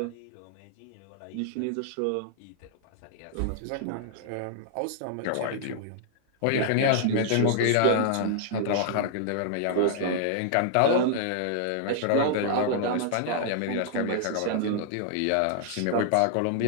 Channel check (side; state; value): both; different; correlation -0.01